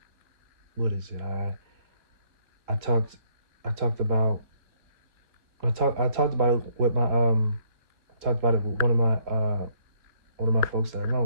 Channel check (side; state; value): left; late; 3.3 ms